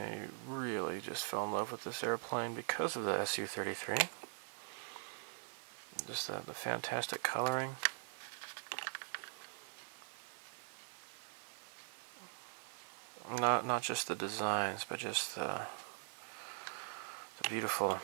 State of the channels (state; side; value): silent; left; digital silence